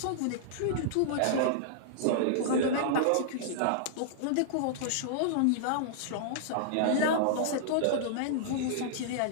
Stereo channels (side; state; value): both; different; correlation -0.02